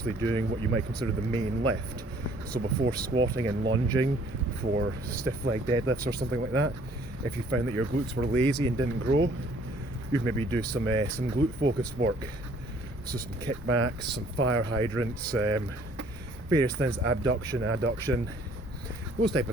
doing what you might consider the main lift. So before squatting and lunging, for stiff leg deadlifts or something like that, if you found that your glutes were lazy and didn't grow, you'd maybe do some glute focused work. So some kickbacks, some fire hydrants, various things, abduction, adduction, those type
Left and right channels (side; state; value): both; normal; correlation 0.58